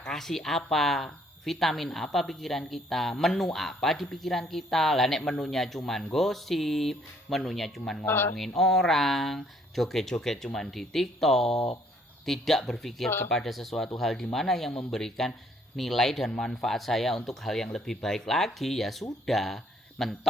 kasih apa, vitamin apa pikiran kita, menu apa di pikiran kita. Lah nek menunya cuman gosip, menunya cuman ngomongin orang, joget-joget cuman di TikTok, tidak berpikir kepada sesuatu hal di mana yang memberikan nilai dan manfaat saya untuk hal yang lebih baik lagi, ya sudah,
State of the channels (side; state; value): both; normal; correlation 0.64